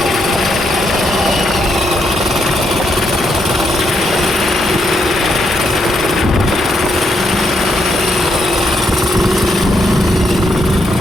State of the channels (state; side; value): normal; both; correlation 0.77